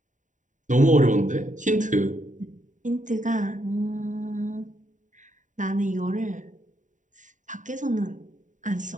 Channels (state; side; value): late; left; 0.36 ms